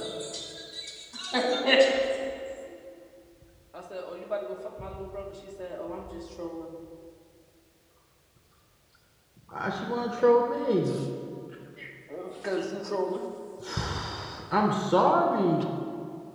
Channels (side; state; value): both; identical; correlation 1.00